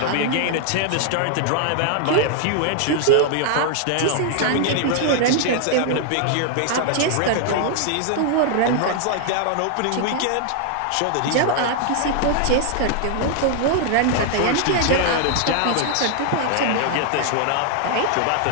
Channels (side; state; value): both; different; correlation 0.00